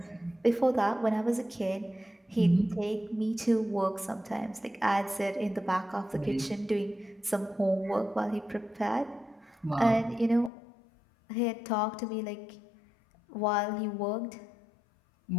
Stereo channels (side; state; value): right; drops out; at 10.5 s